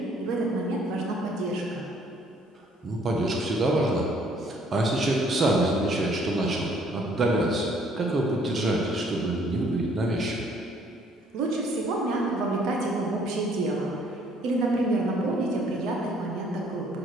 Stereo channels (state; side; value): normal; both; correlation 0.62